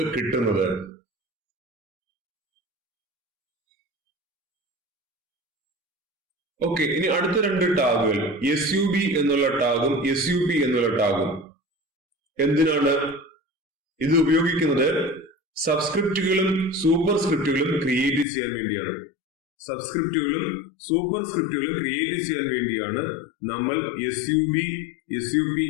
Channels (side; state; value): right; drops out; at 18.2 s